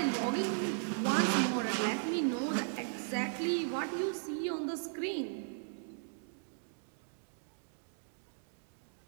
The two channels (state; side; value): silent; left; digital silence